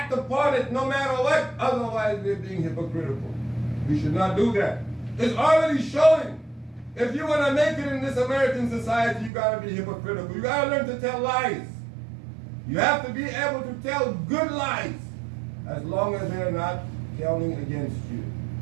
upon it no matter what. Otherwise we're being hypocritical. We should not do that. It's already showing. If you want to make it in this American society, you got to be hypocritical. You got to learn to tell lies. You have to be able to tell good lies as long as they're not counting against you.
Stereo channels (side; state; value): left; drops out; at 9.3 s